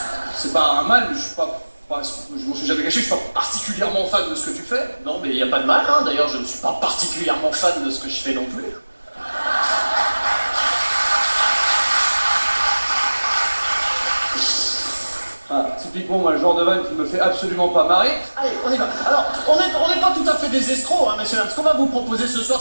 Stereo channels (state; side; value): inverted; both; correlation -1.00